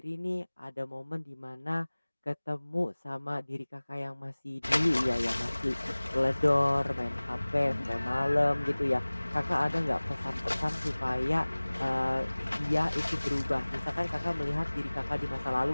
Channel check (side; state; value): both; inverted; correlation -1.00